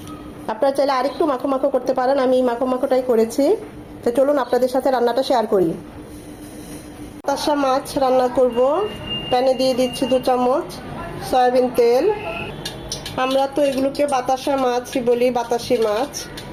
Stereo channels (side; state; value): both; identical; correlation 1.00